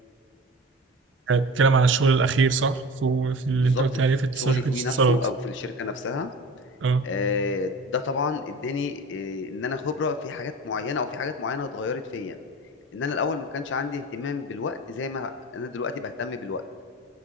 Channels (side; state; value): both; normal; correlation 0.36